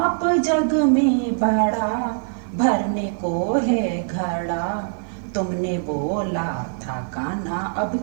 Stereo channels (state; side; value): silent; left; digital silence